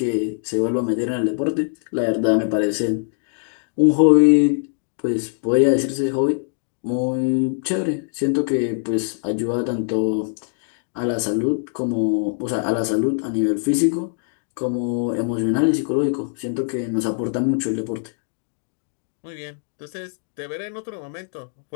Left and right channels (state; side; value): silent; right; digital silence